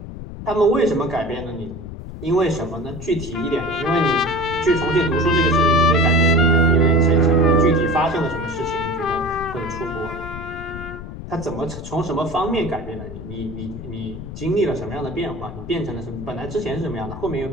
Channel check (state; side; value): noise; left; rumble, 11 dB below the sound